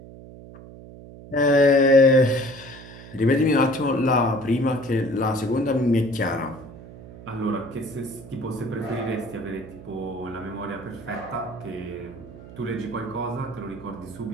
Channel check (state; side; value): noise; right; hum, 17 dB below the sound